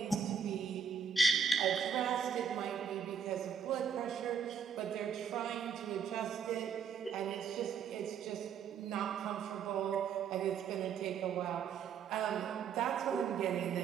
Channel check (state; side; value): quieter; left; 7.0 dB